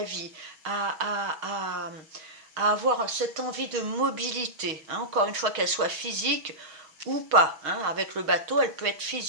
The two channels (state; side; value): late; left; 6.4 ms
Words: vie, à avoir cette envie de mobilité, hein, encore une fois qu'elle soit physique ou pas. Hein, avec le bateau, elle peut être